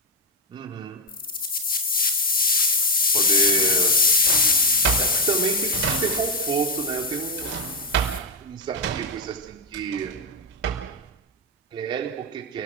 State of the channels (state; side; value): normal; both; correlation 0.06